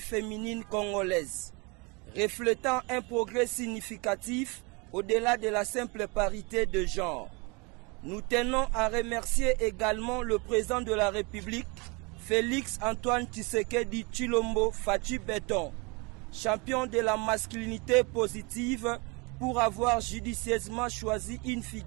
congolaise, reflétant un progrès significatif au-delà de la simple parité de genre. Nous tenons à remercier également le président de la République, Félix Antoine Tshisekedi Tshilombo Fachi Beton, champion de la masculinité positive, pour avoir judicieusement choisi une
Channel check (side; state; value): left; quieter; 28.9 dB